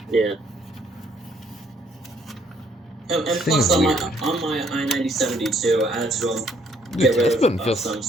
Yeah. And plus, on my I-9072, I had to get rid of some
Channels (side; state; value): both; normal; correlation 0.66